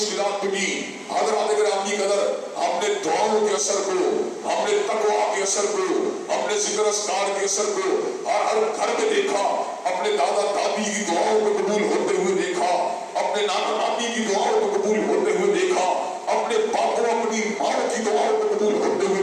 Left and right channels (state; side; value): identical; both; correlation 1.00